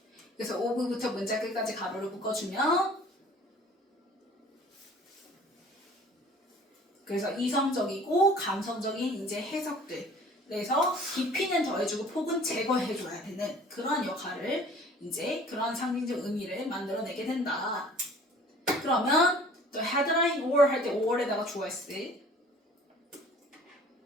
그래서 of부터 문자 끝까지 가로를 묶어주면 그래서 이성적이고 감성적인 이제 해석들 그래서 깊이는 더해주고 폭은 제거해줘야 되는 그런 역할을 이제 그런 상징적 의미를 만들어내게 된다. 그러면 또 headline or 할 때 or에다가 주어 있을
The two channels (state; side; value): normal; both; correlation 0.50